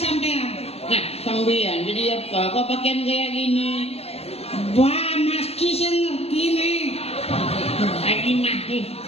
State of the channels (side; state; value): right; late; 0.29 ms